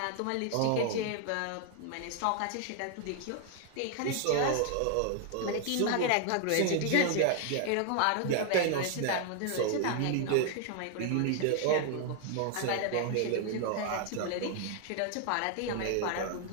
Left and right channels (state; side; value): different; both; correlation 0.00